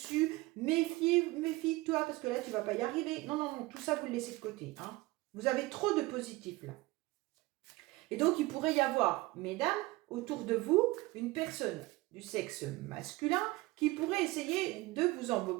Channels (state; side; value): quieter; left; 20.8 dB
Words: méfie-toi, parce que là, tu ne vas pas y arriver. » Non, non, non, tout ça, vous le laissez de côté. Hein. Vous avez trop de positifs, là. Et donc, il pourrait y avoir, mesdames, autour de vous, une personne du sexe masculin qui pourrait essayer de vous